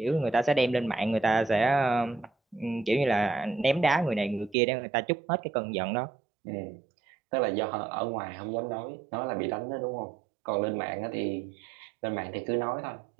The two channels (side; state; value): left; drops out; at 4.5 s